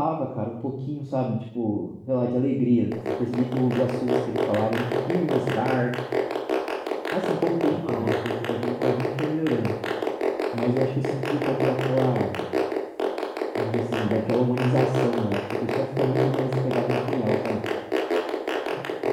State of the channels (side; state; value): both; identical; correlation 1.00